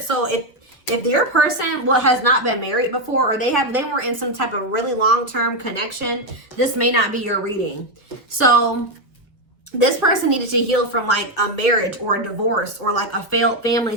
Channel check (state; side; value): normal; both; correlation 0.06